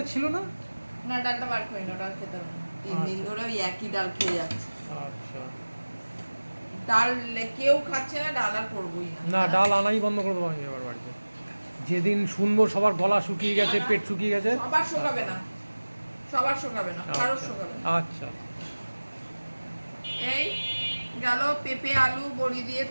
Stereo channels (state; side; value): inverted; both; correlation -1.00